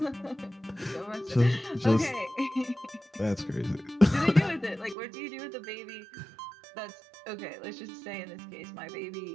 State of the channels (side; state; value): left; drops out; at 5.0 s